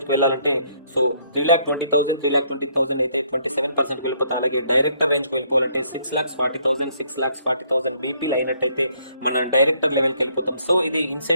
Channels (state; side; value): inverted; both; correlation -0.68